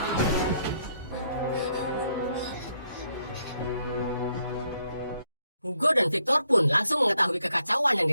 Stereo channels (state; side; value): inverted; both; correlation -0.73